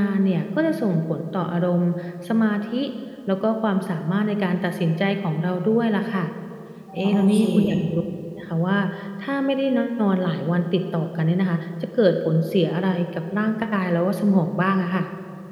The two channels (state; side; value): identical; both; correlation 1.00